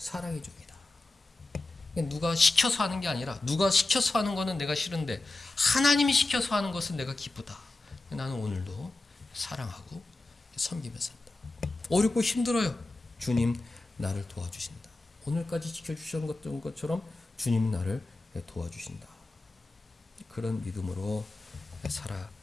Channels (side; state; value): right; quieter; 3.0 dB